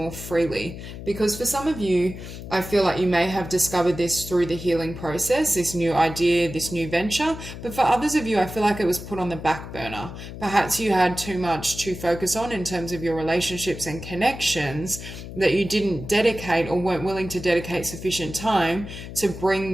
freely. Because for some of you, I feel like you may have discovered this through the healing process, this new idea, this new venture. But for others of you, I feel like it was put on the back burner. Perhaps you had too much to focus on in terms of your relationships and connections, that you didn't dedicate or weren't willing to dedicate sufficient time to bring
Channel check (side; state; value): left; noise; hum, 11 dB below the sound